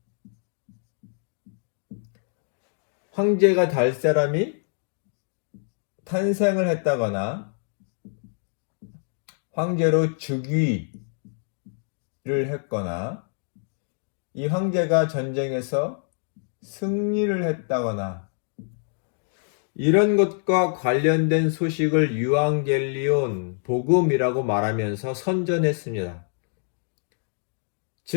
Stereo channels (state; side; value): silent; right; digital silence